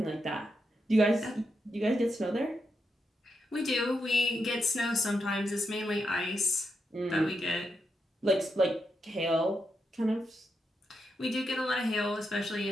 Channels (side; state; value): both; normal; correlation 0.84